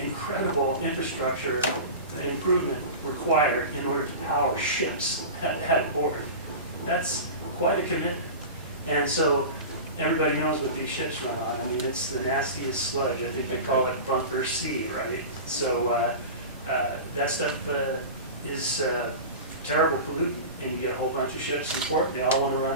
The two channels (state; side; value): inverted; both; correlation -0.30